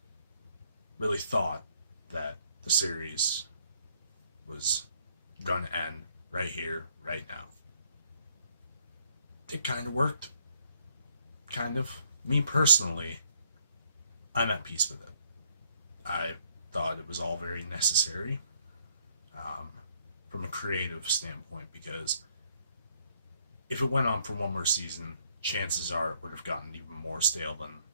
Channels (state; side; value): inverted; both; correlation -0.67